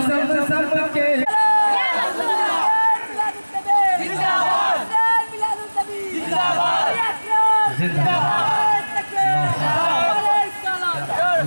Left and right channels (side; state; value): both; inverted; correlation -1.00